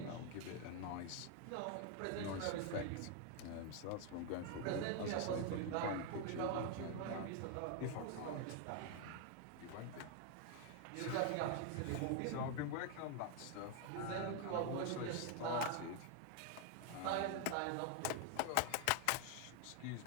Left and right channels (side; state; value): both; different; correlation 0.01